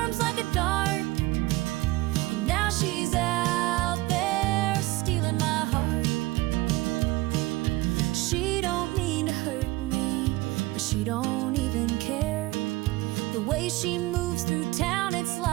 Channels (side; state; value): left; quieter; 20.0 dB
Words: like a dart, and now she's out there stealing my heart. She don't mean to hurt me, but she don't even care. The way she moves through town, it's